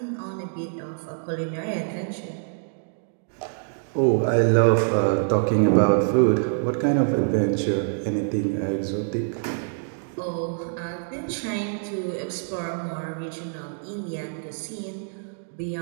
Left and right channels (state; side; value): silent; left; digital silence